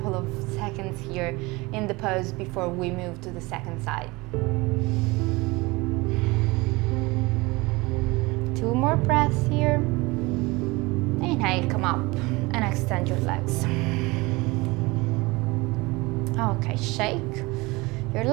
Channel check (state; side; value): quieter; left; 23.4 dB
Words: of seconds here in the pose before we move to the second side. 2 more breaths here. Inhale, come up and extend your legs. Okay, shake your